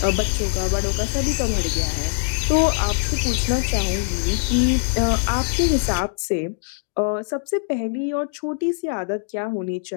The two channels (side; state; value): right; silent; digital silence